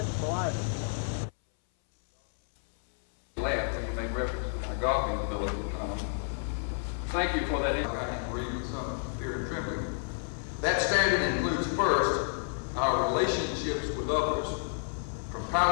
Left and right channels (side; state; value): right; silent; 58 dB below the other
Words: items. Laughed when you make reference to my golfing ability. Thank you for that. I can read with some fear and trembling. That standard includes first our relationships with others, from